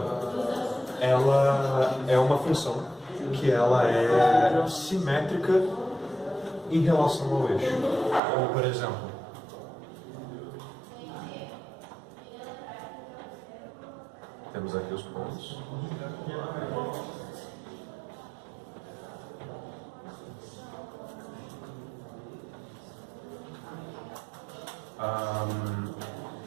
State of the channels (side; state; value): left; drops out; at 8.2 s